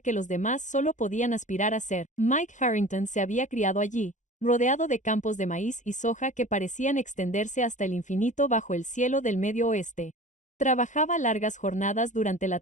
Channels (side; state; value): right; late; 0.36 ms